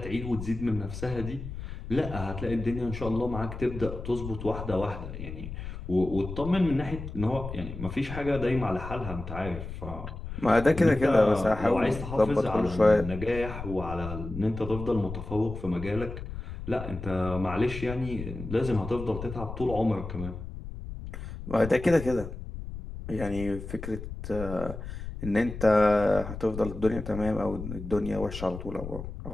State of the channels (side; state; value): left; noise; rumble, 9 dB below the sound